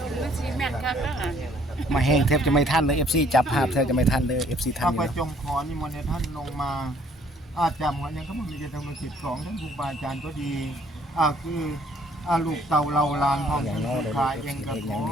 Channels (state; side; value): normal; both; correlation 0.61